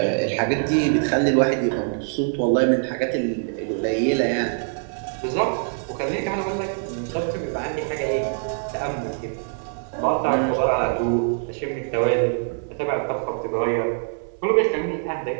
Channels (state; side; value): silent; left; 63 dB below the other